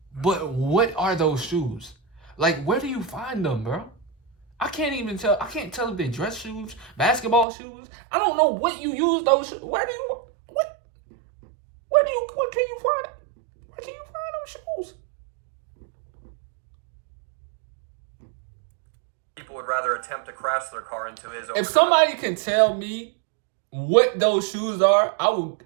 But what are those shoes? Like, where do you find them, bro? I can't even tell. I can't tell if they're dress shoes, basketball shoes. I don't know what you use those. Where can you find? Where can you find those shoes? People would rather attempt to crash their car into his. If somebody can tell me what those shoes are, I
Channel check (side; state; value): left; drops out; at 7.5 s